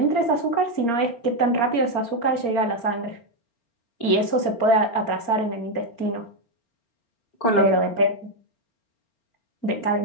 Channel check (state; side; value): late; right; 4.4 ms